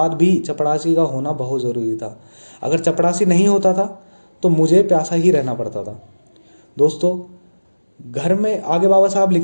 भी चपड़ासी का होना बहुत ज़रूरी था। अगर चपड़ासी नहीं होता था तो मुझे प्यासा ही रहना पड़ता था। दोस्तों, घर में आगे बाबा साहब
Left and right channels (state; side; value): inverted; both; correlation -1.00